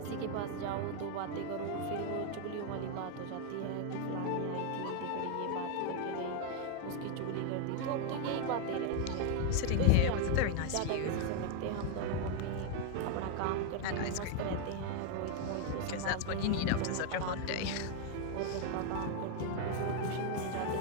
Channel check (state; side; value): different; both; correlation 0.01